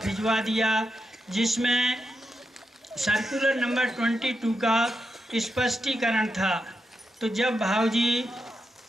भिजवा दिया, जिसमें सर्कुलर नंबर 22 का स्पष्टीकरण था। तो जब भाऊजी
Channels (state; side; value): normal; both; correlation 0.86